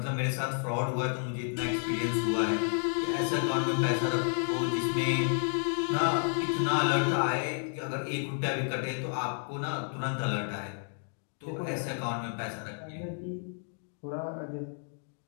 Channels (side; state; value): right; silent; 57 dB below the other